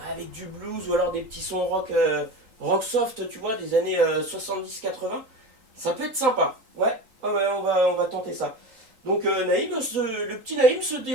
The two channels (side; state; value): left; late; 3.8 ms